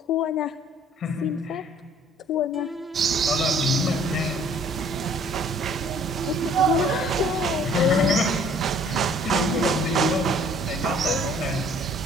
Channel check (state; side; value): normal; both; correlation 0.56